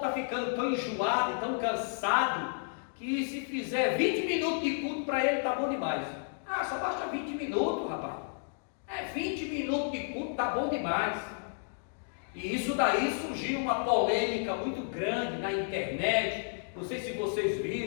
ficando tão enjoado, tão cansado, que se fizer 20 minutos de culto para ele está bom demais. Ah, só basta 20 minutos, rapaz. 20 minutos de culto está bom demais. E isso daí surgiu uma polêmica muito grande na internet. Não sei se vocês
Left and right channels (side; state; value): right; silent; digital silence